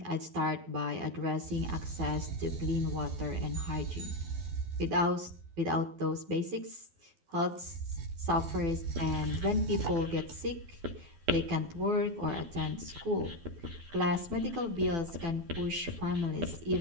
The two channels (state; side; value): late; left; 12 ms